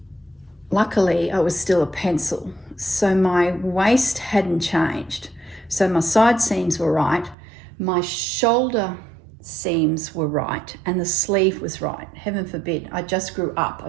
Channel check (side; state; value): left; drops out; at 7.4 s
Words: luckily I was still a pencil, so my waist hadn't changed. So my side seams were right, my shoulder seams were right, and the sleeve was right. Heaven forbid, I just grew up, I